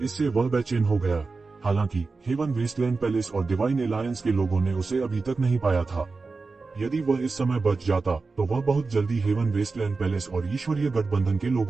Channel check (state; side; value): quieter; left; 4.1 dB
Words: इससे वह बेचैन हो गया। हालांकि हेवन वेस्टलैंड पैलेस और डिवाइन एलायंस के लोगों ने उसे अभी तक नहीं पाया था। यदि वह इस समय बच जाता तो वह बहुत जल्दी हेवन वेस्टलैंड पैलेस और ईश्वरीय गठबंधन के